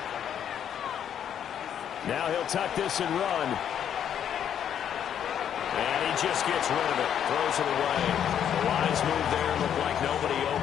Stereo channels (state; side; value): quieter; right; 9.3 dB